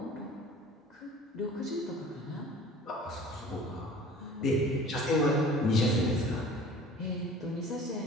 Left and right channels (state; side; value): normal; both; correlation 0.45